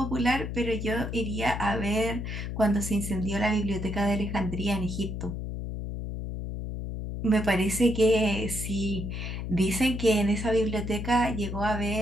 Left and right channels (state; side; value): noise; left; hum, 5 dB below the sound